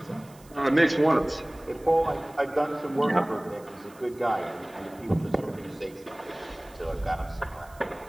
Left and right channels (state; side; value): noise; right; hiss, 26 dB below the sound